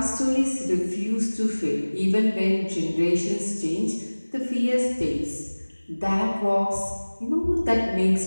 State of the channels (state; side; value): inverted; both; correlation -1.00